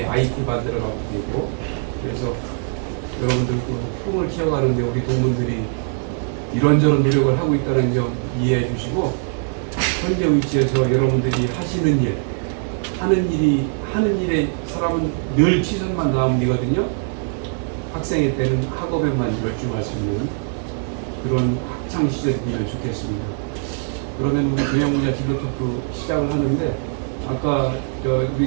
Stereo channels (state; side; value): silent; left; 56 dB below the other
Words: IT 받으러 가도 되고 그래서 여러분들 그 꿈을 키워가는데 우리 동문들이 이런저런 노력을 하고 있다는 점 이해해 주시고 현재 위치에서 여러분들이 하시는 일, 하는 일에 사람은 늘 최선만 다하면 되거든요. 학생의 때는 학업에만 열중할 수 있는 그런 학창 시절이면 좋겠습니다. 그러면 우리 경영분야 진로특구 시작을 하는데 아까 우리